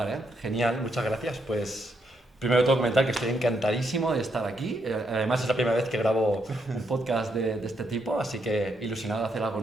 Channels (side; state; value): both; normal; correlation 0.78